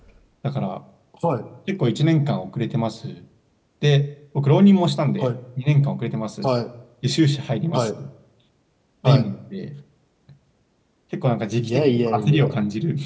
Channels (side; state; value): both; identical; correlation 1.00